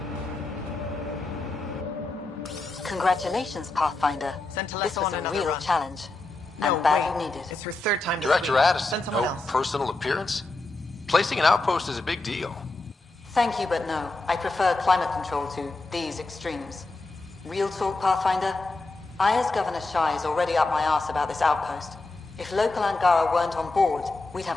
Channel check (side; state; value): right; quieter; 3.2 dB